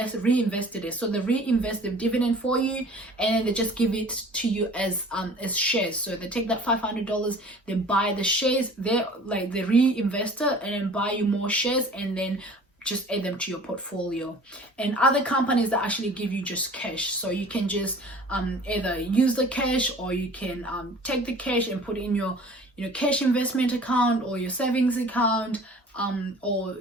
reinvested it. So they reinvest the dividend for you, and then they just give it to you as shares. So they take that $500, they buy the shares, they reinvest it and then buy you more shares, and then just add them to your portfolio. And other companies that actually give you just cash, so you can just either use the cash, or you can take the cash and put it in your cash investment account or your savings account, or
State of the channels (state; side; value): normal; both; correlation 0.47